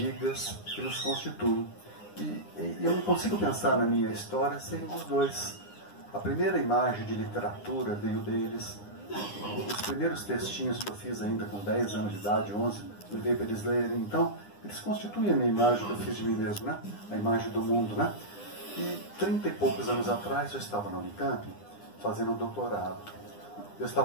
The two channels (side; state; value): right; late; 9.8 ms